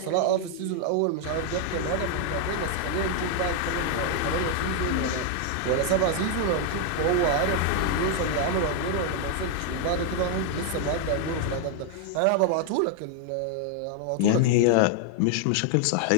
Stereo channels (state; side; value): different; both; correlation 0.00